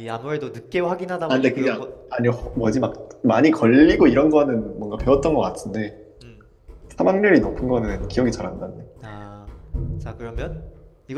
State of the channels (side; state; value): both; identical; correlation 1.00